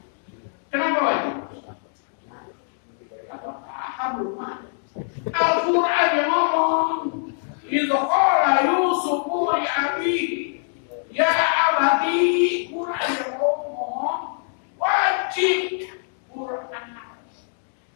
Kenapa wajib? Apa paham rumah? Al-Quran yang ngomong, idza qala Yusufu li abihi ya abati, Quran yang ngomong wajib Quran.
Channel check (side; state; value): right; silent; digital silence